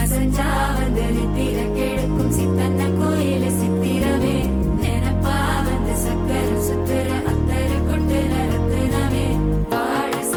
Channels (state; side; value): identical; both; correlation 1.00